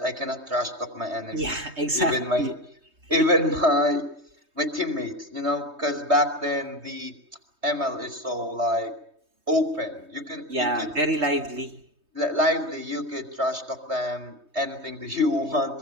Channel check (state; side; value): late; left; 3.2 ms